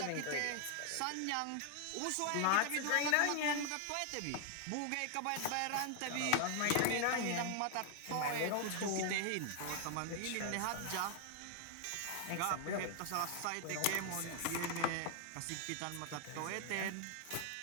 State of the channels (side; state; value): both; different; correlation 0.00